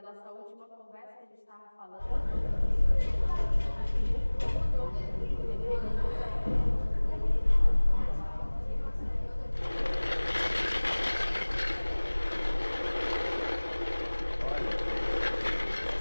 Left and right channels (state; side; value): inverted; both; correlation -1.00